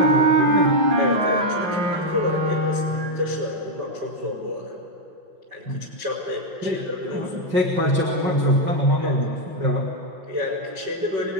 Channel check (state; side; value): late; left; 5.6 ms